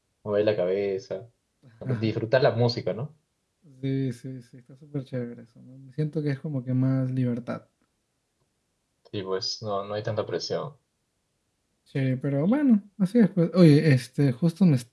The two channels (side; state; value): both; identical; correlation 1.00